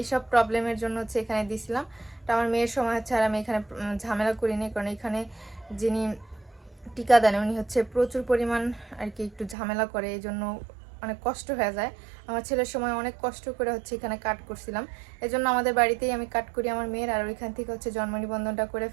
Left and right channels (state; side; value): drops out; left; at 9.6 s